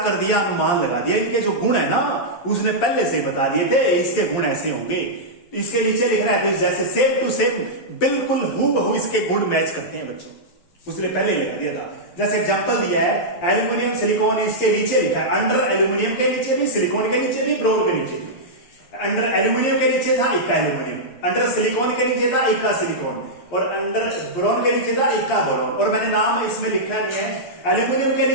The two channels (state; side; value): late; right; 11 ms